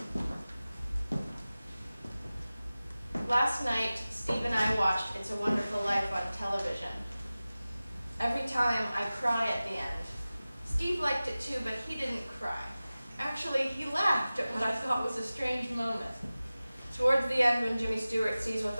Last night, Steve and I watched It's a Wonderful Life on television. Every time I cry at the end. Steve liked it too, but he didn't cry. Actually, he laughed at what I thought was a strange moment. Towards the end, when Jimmy Stewart sees what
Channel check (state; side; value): inverted; both; correlation -0.97